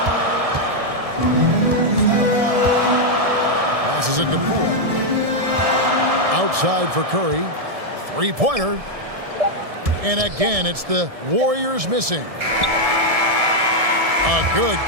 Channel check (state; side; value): late; left; 1.7 ms